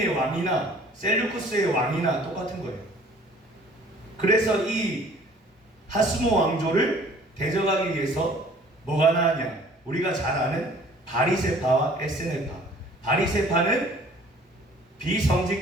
왕이나 셀루쿠스의 왕이나 똑같은 거예요. 그래서 이 하스모 왕조를 대적하기 위해서 뭐가 나왔냐? 우리가 잘 아는 바리새파와 에스네파. 바리새파는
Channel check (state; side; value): normal; both; correlation 0.53